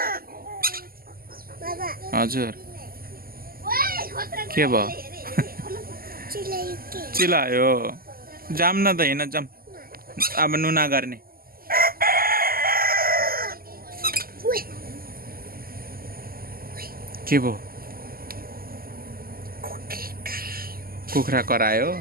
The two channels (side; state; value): left; late; 0.42 ms